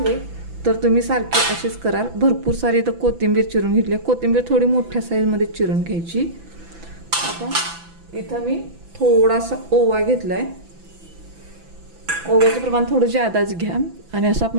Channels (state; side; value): late; left; 6.0 ms